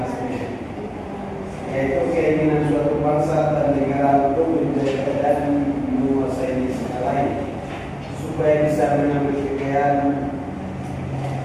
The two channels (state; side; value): identical; both; correlation 1.00